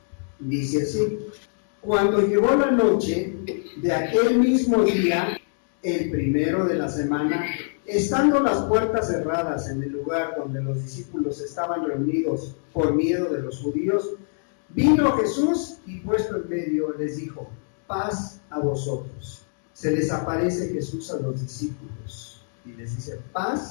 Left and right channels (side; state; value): right; silent; digital silence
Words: dice así: cuando llegó la noche de aquel mismo día, el primero de la semana, estando las puertas cerradas en el lugar donde los discípulos estaban reunidos por miedo de los judíos, vino Jesús y puesto en medio les dijo: paz a vosotros. Se les aparece Jesús a los discípulos y les dice: